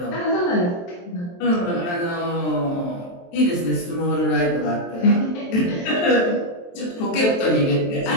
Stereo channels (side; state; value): right; late; 23 ms